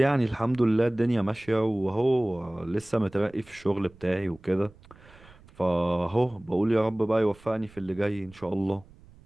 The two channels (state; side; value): noise; right; rumble, 25 dB below the sound